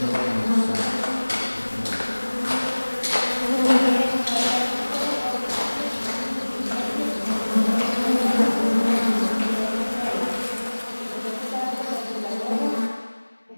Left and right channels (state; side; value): inverted; both; correlation -1.00